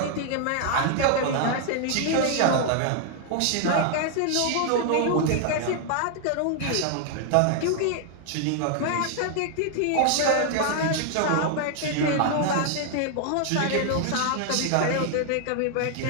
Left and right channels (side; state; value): both; different; correlation 0.00